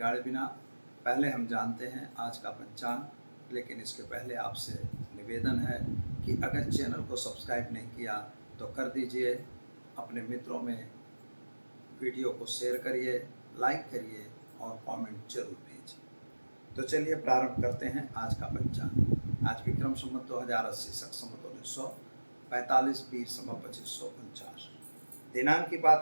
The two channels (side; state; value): both; inverted; correlation -1.00